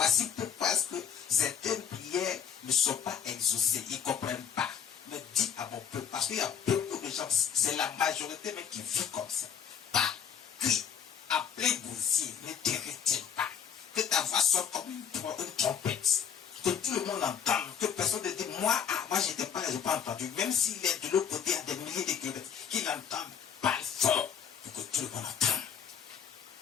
pourquoi est-ce que certaines prières ne sont pas exaucées. Ils ne comprennent pas. Mais dis à mon peuple. Parce qu'il y a beaucoup de gens, c'est la majorité même qui vit comme ça. Pas crie à plein gosier, ne te retiens pas. Que ta voix soit comme une trompette. Que tout le monde entende. Que personne ne dise, moi j'étais pas là, je n'ai pas entendu. Même s'il est de l'autre côté à des milliers de kilomètres, qu'il entende, parle fort. Pour que tout le monde entende.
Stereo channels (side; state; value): right; quieter; 7.9 dB